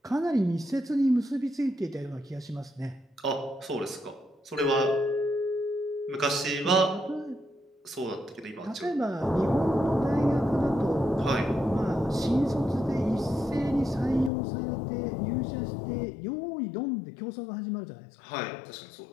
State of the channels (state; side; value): drops out; right; at 14.3 s